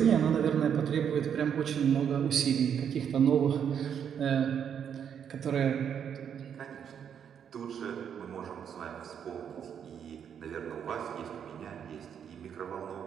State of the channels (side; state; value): left; quieter; 8.2 dB